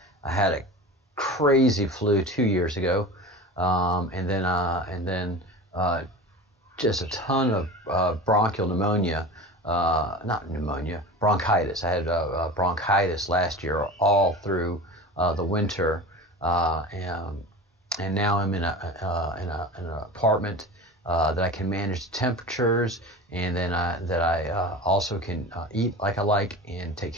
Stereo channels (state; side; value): normal; both; correlation 0.33